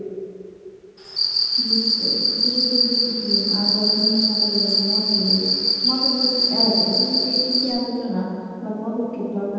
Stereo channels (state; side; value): identical; both; correlation 1.00